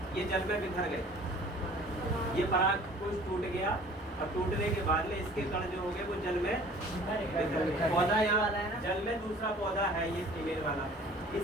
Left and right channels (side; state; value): both; normal; correlation 0.49